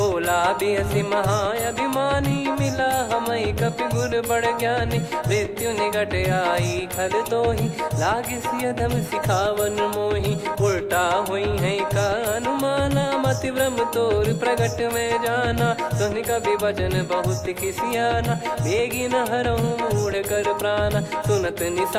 बिहसी महाअभिमानी मिला हमई कपि गुर बड़ ज्ञानी मृत्यु निकट आई खल तो ही लागे सियधम सिखावन मोही उल्टा हुई है का अनुमाना मति ब्रह्म तोर प्रगट में जाना सुन कभी भजन बहुत किसियाना बेगी न हरहु मूढ़ कर प्राणा सुनत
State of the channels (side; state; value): both; identical; correlation 1.00